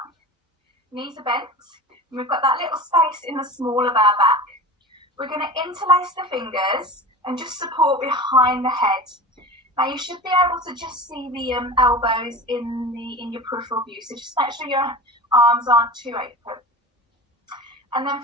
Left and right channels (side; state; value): both; normal; correlation 0.33